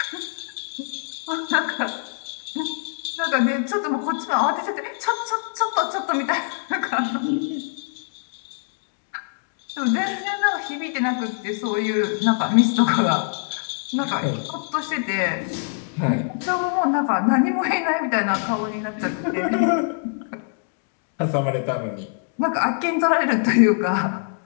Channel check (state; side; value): silent; right; digital silence